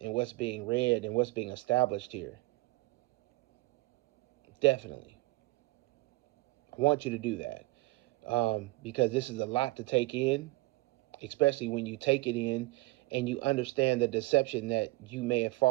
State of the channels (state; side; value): quieter; left; 21.5 dB